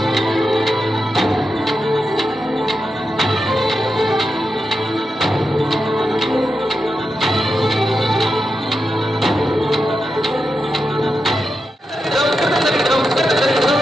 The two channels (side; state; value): both; normal; correlation 0.88